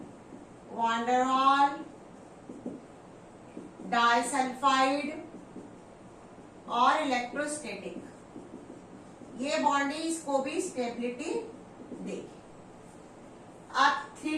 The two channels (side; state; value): both; identical; correlation 1.00